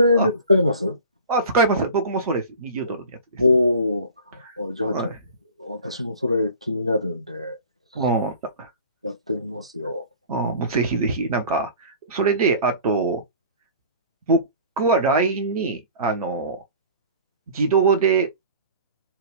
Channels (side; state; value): both; inverted; correlation -0.42